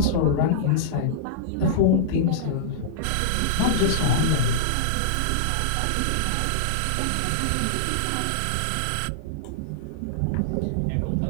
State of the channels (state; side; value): different; both; correlation -0.02